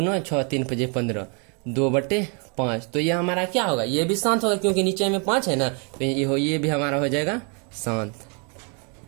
6, 3 5 15, 2/5। तो ये हमारा क्या होगा, ये भी शांत होगा क्योंकि नीचे में 5 है ना, तो ये भी हमारा हो जाएगा शांत,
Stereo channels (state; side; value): quieter; left; 35.9 dB